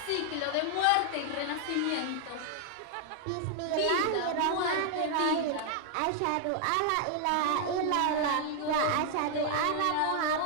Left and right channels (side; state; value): both; different; correlation 0.00